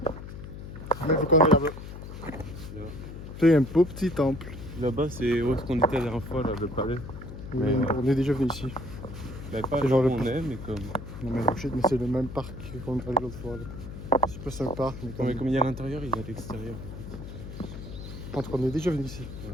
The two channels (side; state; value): left; noise; hum, 11 dB below the sound